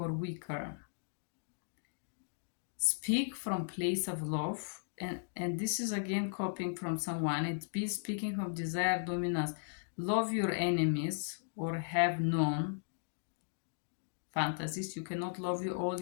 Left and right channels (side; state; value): right; silent; digital silence